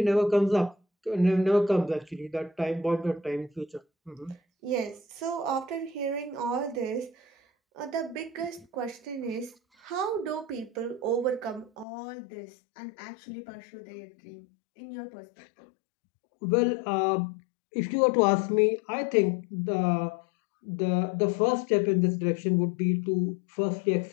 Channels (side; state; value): right; drops out; at 11.9 s